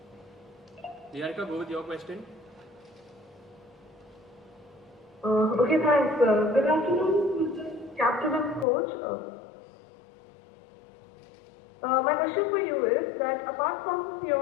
go with your question. Okay, thanks. Good afternoon, Mr. Captain and Coach. My question for you is that apart from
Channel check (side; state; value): right; drops out; at 8.7 s